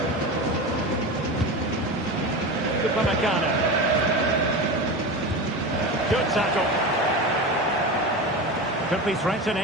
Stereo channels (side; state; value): both; normal; correlation 0.25